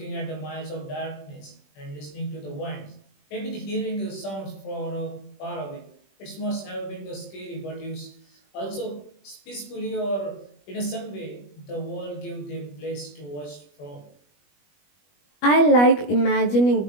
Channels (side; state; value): right; late; 21 ms